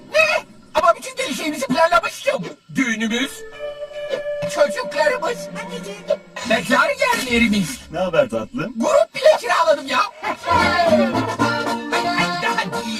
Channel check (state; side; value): identical; both; correlation 1.00